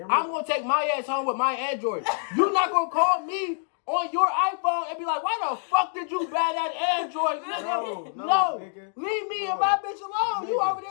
I'm out. going to take my ass home with my Android. You're not going to call me on your iPhone and be like, why the fuck did you buy that Android, nigga? No, nigga. Leave me No. and my bitch alone. You Nigga, over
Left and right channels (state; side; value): silent; right; digital silence